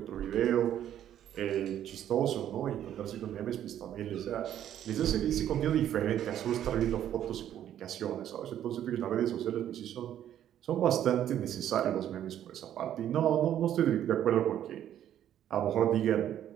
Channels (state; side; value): quieter; left; 10.9 dB